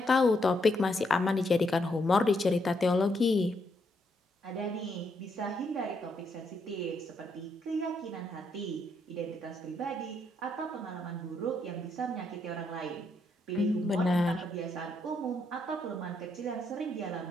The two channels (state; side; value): normal; both; correlation 0.76